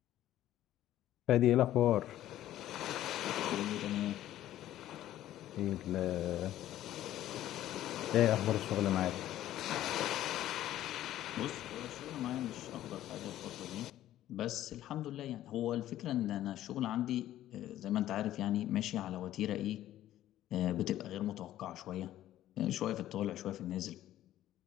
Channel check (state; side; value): quieter; right; 13.3 dB